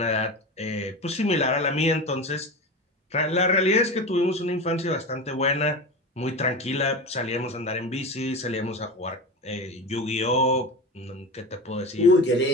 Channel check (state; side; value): normal; both; correlation 0.26